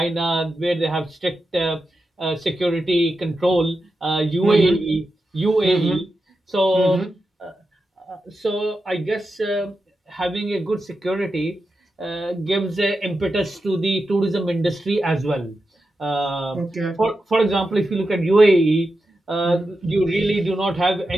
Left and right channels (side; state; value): both; normal; correlation 0.90